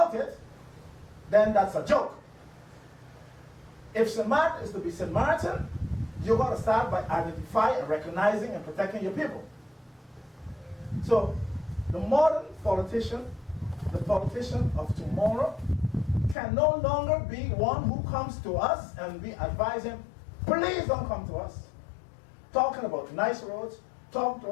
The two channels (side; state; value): right; drops out; at 16.4 s